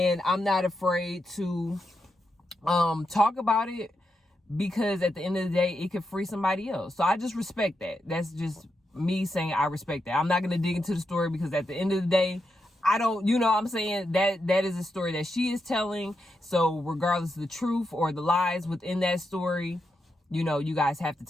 I'm not afraid to talk about it, because at the end of the day, it could free somebody else. So I just respect that. That's just me saying I respect that. I'm not going to dig into the story, because at the end of the day, I don't, I'm saying that is a story that she is telling. So regardless of the truth or the lies within that story, you guys have to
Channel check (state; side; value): normal; both; correlation 0.85